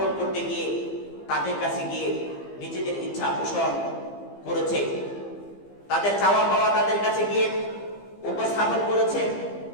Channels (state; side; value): late; right; 15 ms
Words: করতে গিয়ে তাদের কাছে গিয়ে নিজেদের ইচ্ছা পোষণ করেছে, তাদের চাওয়া পাওয়া তাদের কাছে গিয়ে উপস্থাপন করেছে।